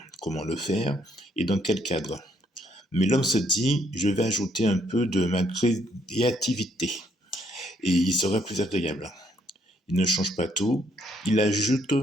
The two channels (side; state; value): both; normal; correlation 0.70